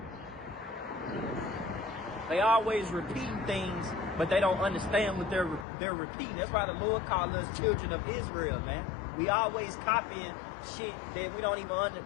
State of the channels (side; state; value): right; drops out; at 5.7 s